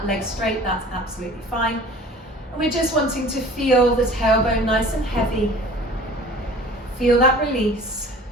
leg straight, that's absolutely fine. And we're just wanting to feel the tailbone nice and heavy. Feel that release.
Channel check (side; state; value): both; normal; correlation 0.45